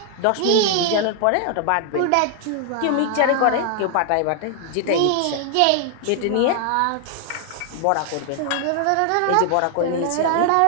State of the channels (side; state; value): both; different; correlation 0.00